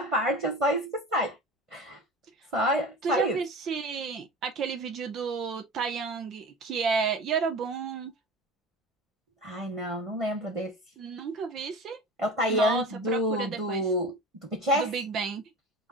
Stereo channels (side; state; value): both; normal; correlation 0.33